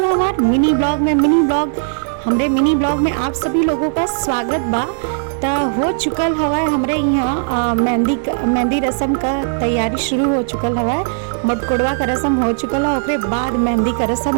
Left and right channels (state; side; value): silent; left; digital silence